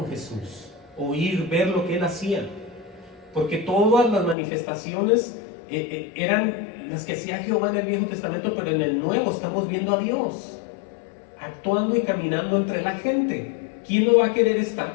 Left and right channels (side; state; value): right; drops out; at 4.4 s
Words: Jesús, oír, ver lo que Él hacía. Porque todas las manifestaciones eran las que hacía Jehová en el Viejo Testamento, pero en el Nuevo estamos viendo a Dios actuando y caminando entre la gente. ¿Quién no va a querer estar